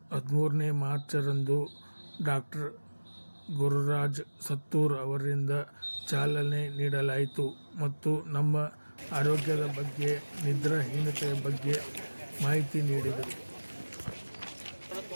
13ನೇ ಮಾರ್ಚರಂದು ಡಾಕ್ಟರ್ ಗುರುರಾಜ್ ಸತ್ತೂರ್ ಅವರಿಂದ ಚಾಲನೆ ನೀಡಲಾಯಿತು ಮತ್ತು ನಮ್ಮ ಆರೋಗ್ಯದ ಬಗ್ಗೆ, ನಿದ್ರಾಹೀನತೆಯ ಬಗ್ಗೆ ಮಾಹಿತಿ ನೀಡಿದರು.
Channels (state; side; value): inverted; both; correlation -1.00